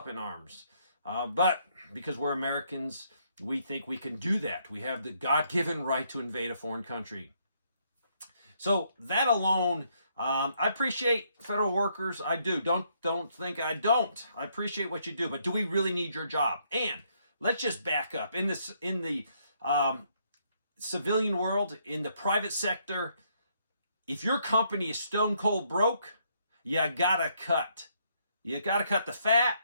in arms. But because we're Americans, we think we can do that. We have the God-given right to invade a foreign country. So that alone, I appreciate federal workers. I do. Don't think I don't. I appreciate what you do. But do we really need your job? And let's just back up. In the civilian world, in the private sector, if your company is stone cold broke, you gotta cut. You got to cut the fat,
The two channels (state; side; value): inverted; both; correlation -0.72